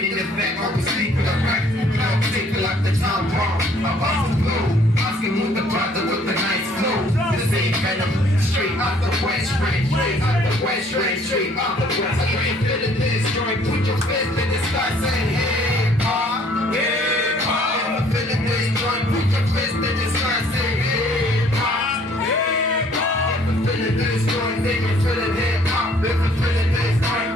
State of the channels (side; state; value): both; normal; correlation 0.60